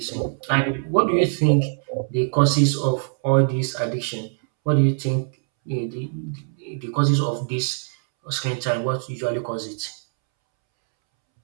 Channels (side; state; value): left; silent; 64 dB below the other